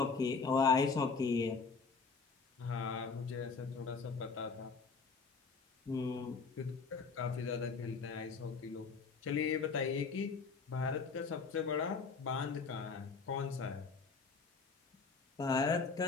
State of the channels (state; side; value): quieter; right; 4.8 dB